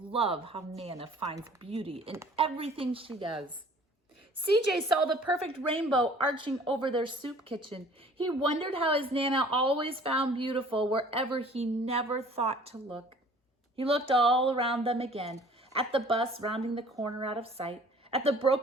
how Nana finds beauty in everything she does. CJ saw the perfect rainbow arching over their soup kitchen. He wondered how his Nana always found beautiful wherever he never thought to look. He looked all around them again, at the bus rounding the corner out of sight, at the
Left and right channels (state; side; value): normal; both; correlation 0.51